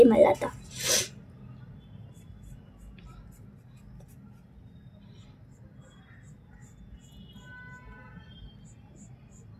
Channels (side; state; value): both; identical; correlation 1.00